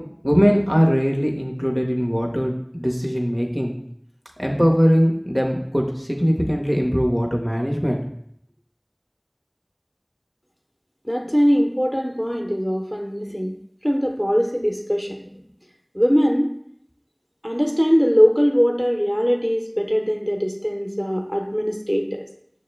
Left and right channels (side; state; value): both; identical; correlation 1.00